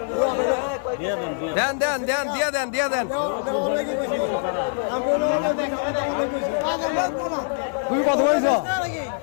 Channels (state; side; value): silent; right; 63 dB below the other